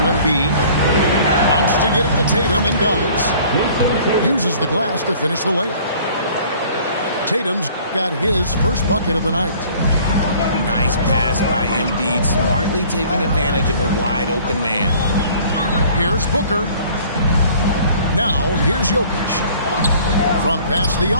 Embiid. Wants to get it to Tatum and does. Uses the glass to finish the layup. Tatum's got his first bucket of the night. Nice pass by Embiid, smartly taking advantage of a wide open man. Here's Booker. Now here's Jokic. From past the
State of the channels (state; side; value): inverted; both; correlation -0.52